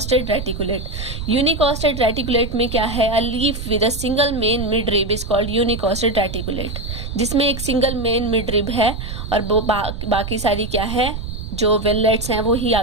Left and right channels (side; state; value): right; noise; rumble, 7 dB below the sound